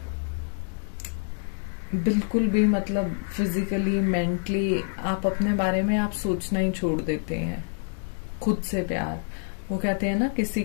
भी मतलब फिजिकली मेंटली आप अपने बारे में आप सोचना ही छोड़ देते हैं। खुद से प्यार, वो कहते हैं ना किसी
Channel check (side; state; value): right; silent; digital silence